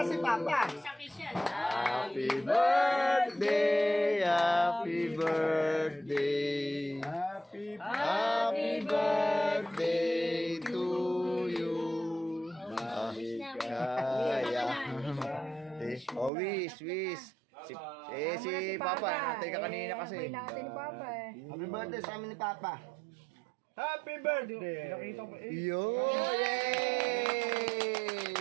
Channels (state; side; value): drops out; left; at 16.3 s